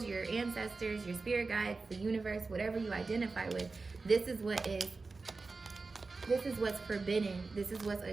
your ancestors, your spirit guides, the universe, whatever you identify with. This is what's forbidden. This is what's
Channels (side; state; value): left; quieter; 3.9 dB